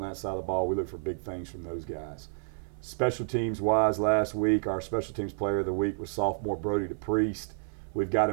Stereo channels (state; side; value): silent; left; 58 dB below the other